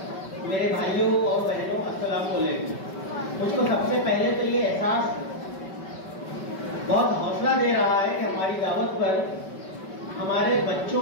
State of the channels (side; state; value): right; late; 5.2 ms